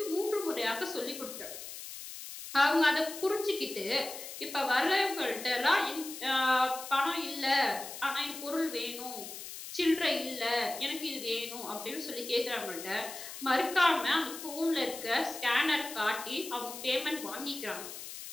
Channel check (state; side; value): noise; left; hiss, 10 dB below the sound